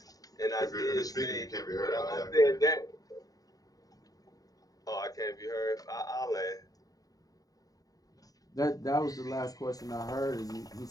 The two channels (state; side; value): late; right; 0.18 ms